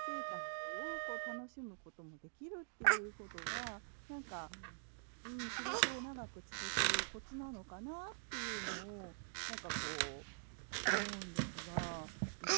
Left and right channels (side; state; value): left; silent; digital silence